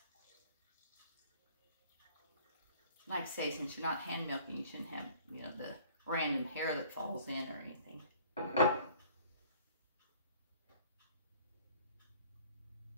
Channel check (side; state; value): both; inverted; correlation -0.53